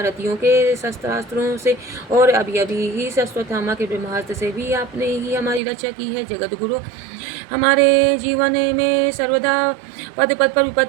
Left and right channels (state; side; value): drops out; left; at 5.6 s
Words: के शस्त्रास्त्रों से और अभी अभी ही अश्वत्थामा के ब्रह्मास्त्र से भी आपने ही हमारी रक्षा की है। जगत गुरु, हमारे जीवन में सर्वदा पद पद पर